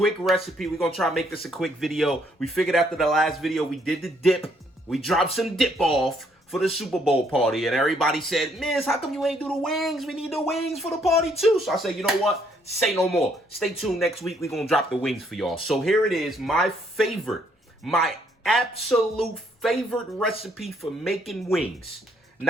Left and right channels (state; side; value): normal; both; correlation 0.69